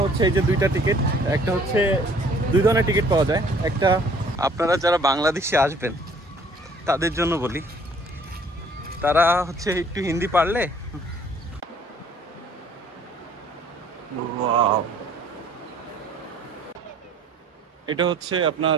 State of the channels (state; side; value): normal; both; correlation 0.57